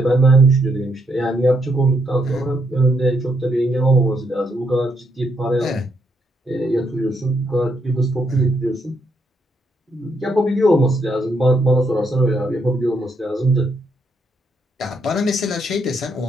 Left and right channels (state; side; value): normal; both; correlation 0.76